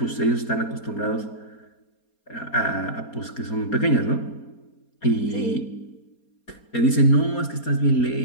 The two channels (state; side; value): late; right; 4.3 ms